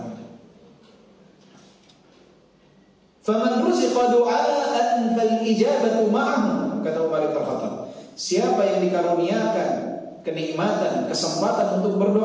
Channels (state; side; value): identical; both; correlation 1.00